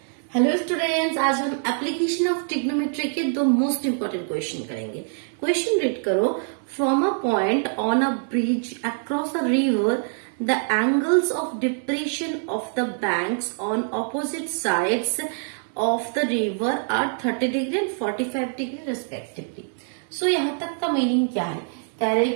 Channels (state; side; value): silent; left; 62 dB below the other